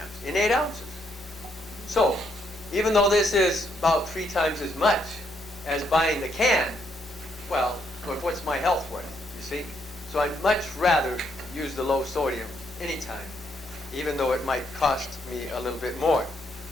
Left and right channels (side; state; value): both; normal; correlation 0.74